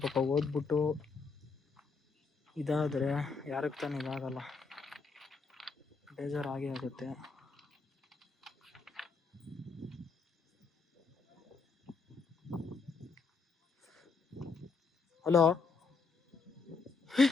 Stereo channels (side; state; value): right; quieter; 4.6 dB